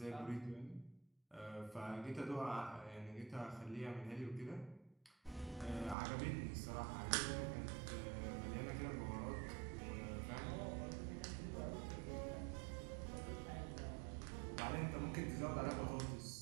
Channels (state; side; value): drops out; left; at 6.0 s